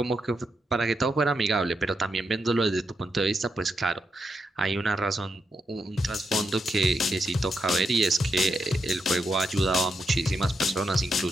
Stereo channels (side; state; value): both; normal; correlation 0.83